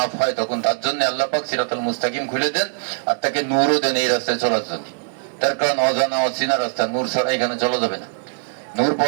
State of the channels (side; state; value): left; silent; digital silence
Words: হয়, তখন তার জন্য আল্লাহ পাক সিরাতাল মুস্তাকিম খুলে দেন, আর তাকে নূরও দেন এই রাস্তায় চলার জন্য। তার কারণ অজানা অচেনা রাস্তা, নূর ছাড়া এখানে চলা যাবে না। নূর